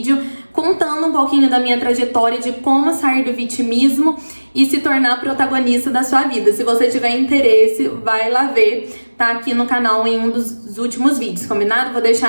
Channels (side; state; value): both; inverted; correlation -1.00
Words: contando um pouquinho da minha trajetória de como sair do vitimismo e se tornar protagonista da sua vida. Se você tiver interesse, vai lá ver, tá aqui no canal em um dos últimos vídeos, combinado? Vou